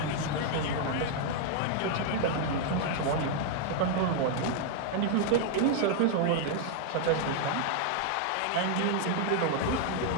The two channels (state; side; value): different; both; correlation 0.00